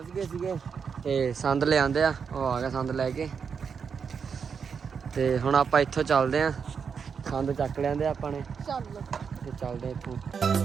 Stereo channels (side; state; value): left; quieter; 6.3 dB